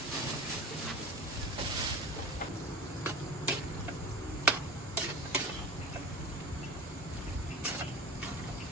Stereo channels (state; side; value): normal; both; correlation 0.34